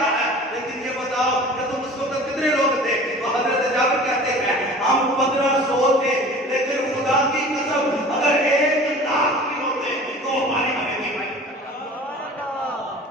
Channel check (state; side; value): normal; both; correlation 0.42